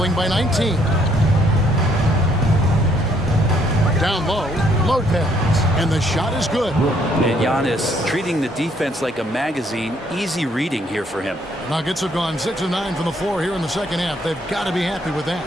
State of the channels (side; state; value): both; normal; correlation 0.68